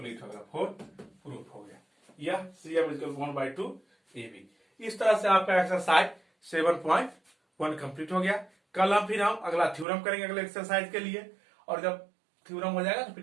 हो गया, फोर्थ प्रूफ हो गया, यह CM इक्वल 1/2 AB। इस तरह से आपका एक्सरसाइज 7.1 कंप्लीट हो गया। कल हम फिर अगला थ्योरम करेंगे अगले एक्सरसाइज के लिए, और जब थ्योरम हो जाएगा तो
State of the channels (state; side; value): drops out; left; at 9.9 s